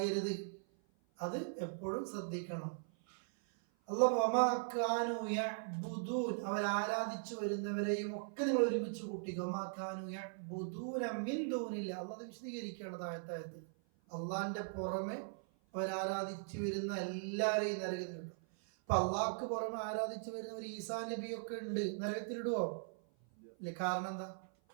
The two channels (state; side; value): silent; left; 51 dB below the other